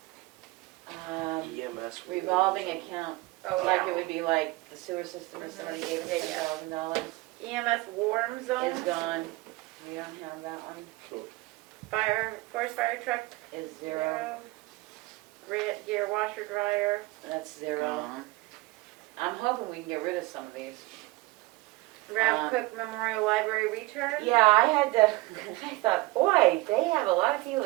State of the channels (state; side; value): quieter; left; 21.0 dB